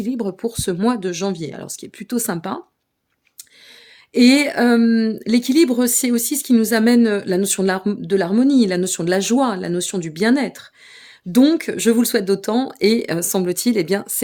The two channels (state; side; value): identical; both; correlation 1.00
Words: pour ce mois de janvier. Alors, ce qui est plutôt sympa. Et l'équilibre, c'est aussi ce qui nous amène la notion de l'harmonie, la notion de la joie, la notion du bien-être. Donc, je vous le souhaite d'autant et semble-t-il, eh bien,